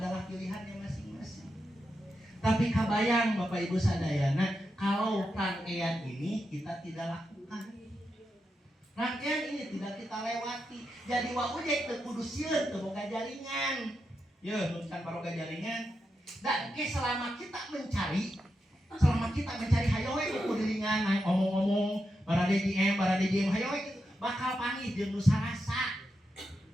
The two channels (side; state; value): both; normal; correlation 0.86